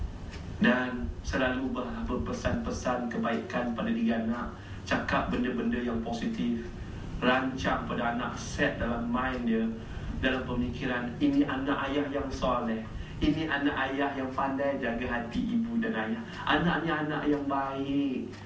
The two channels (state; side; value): identical; both; correlation 1.00